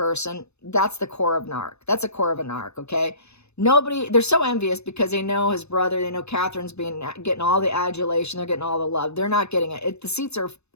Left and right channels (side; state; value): right; late; 0.80 ms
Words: that's the core of narc. That's the core of a narc, okay? They're so envious because they know his brother, they know Catherine's getting all the adulation, they're getting all the love. They're not getting it.